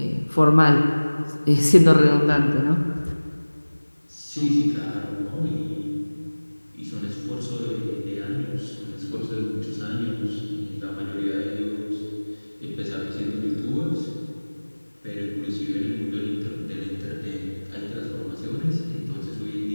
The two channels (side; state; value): both; inverted; correlation -1.00